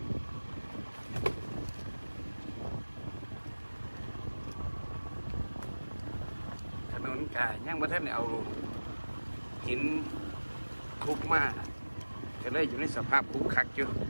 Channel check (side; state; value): both; inverted; correlation -1.00